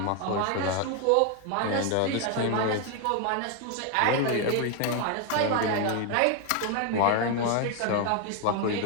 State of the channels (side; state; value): both; different; correlation 0.01